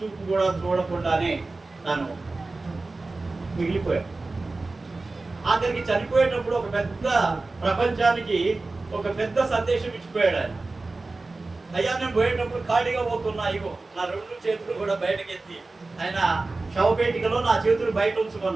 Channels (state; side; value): quieter; left; 3.4 dB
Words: కూడా చూడకుండానే తను మిగిలిపోయాడు. ఆఖరికి చనిపోయేటప్పుడు ఒక పెద్ద ప్రపంచానికి ఒక పెద్ద సందేశం ఇచ్చిపోయాడు ఆయన. అయ్యా నేను పోయేటప్పుడు ఖాళీగా పోతున్నా, ఇగో నా 2 చేతులు కూడా బయటకెత్తి ఆయన శవపేటికలో నా చేతులు బయట